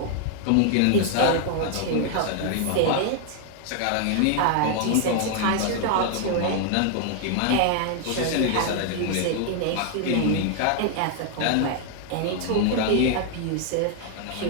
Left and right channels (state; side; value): different; both; correlation 0.00